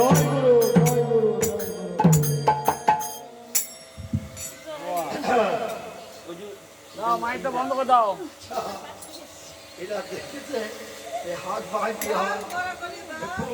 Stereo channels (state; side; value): identical; both; correlation 1.00